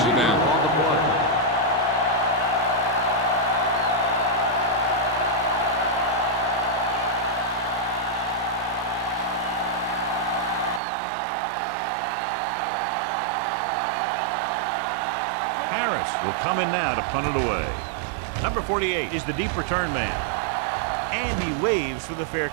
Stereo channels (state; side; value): drops out; left; at 10.8 s